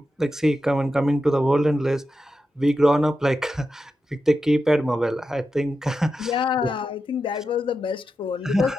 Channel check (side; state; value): both; normal; correlation 0.89